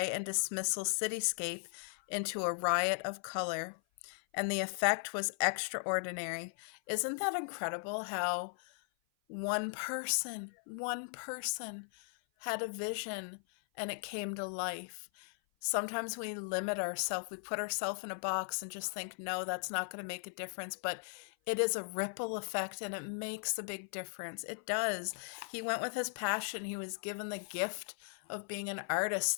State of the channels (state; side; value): silent; right; 53 dB below the other